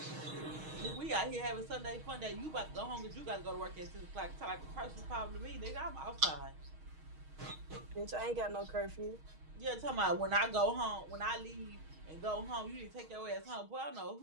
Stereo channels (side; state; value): left; late; 6.4 ms